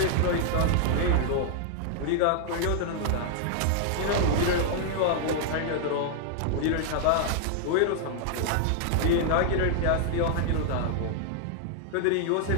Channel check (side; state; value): both; different; correlation 0.00